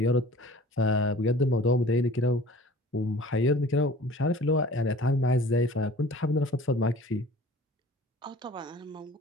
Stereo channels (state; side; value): normal; both; correlation 0.46